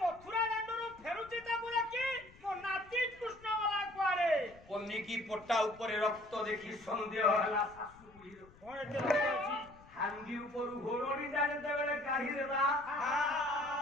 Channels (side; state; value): left; noise; rumble, 24 dB below the sound